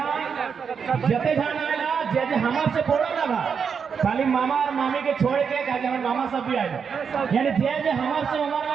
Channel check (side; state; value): left; quieter; 6.4 dB